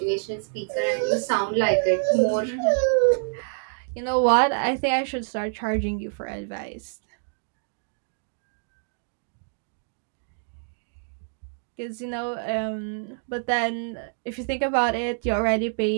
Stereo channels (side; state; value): left; silent; digital silence